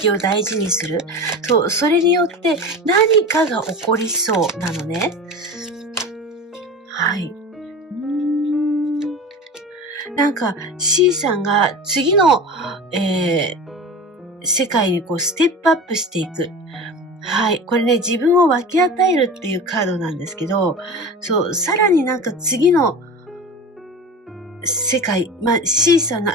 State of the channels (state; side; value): normal; both; correlation 0.31